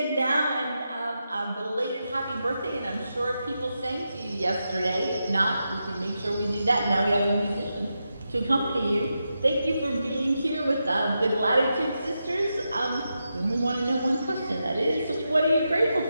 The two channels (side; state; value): both; inverted; correlation -0.87